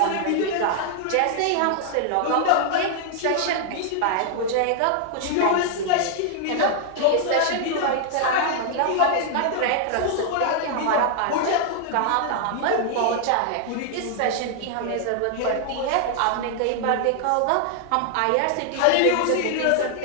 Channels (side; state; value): both; different; correlation 0.00